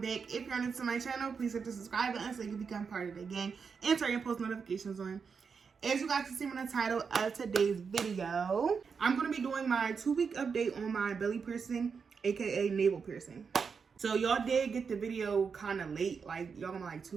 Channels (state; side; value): quieter; left; 5.8 dB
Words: back. If you're new to my channel, please hit the subscribe button so you can become part of the gang and turn your post notifications on. As you guys can see from the title of today's video, I'm going to be doing my 2-week update on my belly piercing, aka navel piercing. So y'all did get the video kind of late, like y'all gonna like